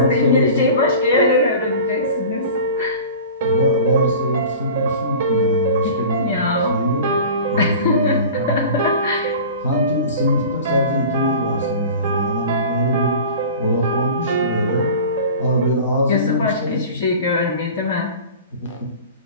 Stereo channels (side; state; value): both; inverted; correlation -0.39